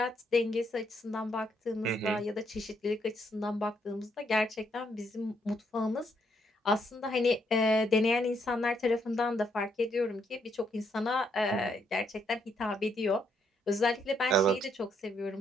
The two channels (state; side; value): normal; both; correlation 0.74